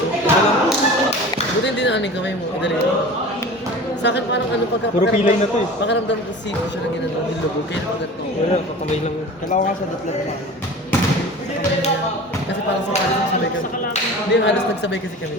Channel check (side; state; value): both; normal; correlation 0.38